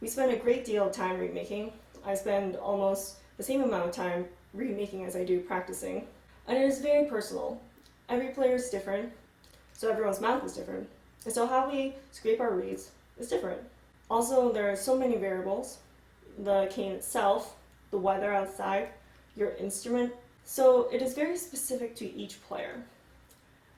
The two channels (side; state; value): both; identical; correlation 1.00